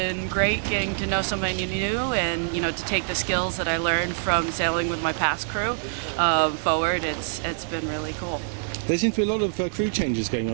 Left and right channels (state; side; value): silent; left; digital silence